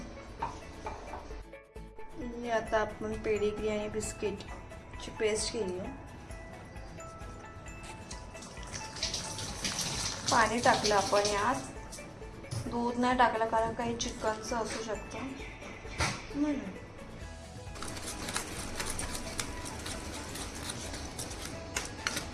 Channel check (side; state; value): both; identical; correlation 1.00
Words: आता आपण पेडिग्री आणि बिस्किटची पेस्ट केली आहे. पाणी टाकलं आपण यात. दूध नाही टाकलं कारण काही चिकनचं असू शकतं म्हणून.